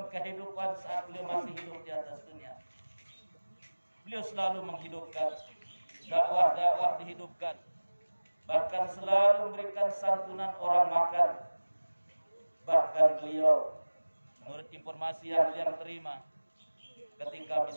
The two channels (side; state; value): both; inverted; correlation -1.00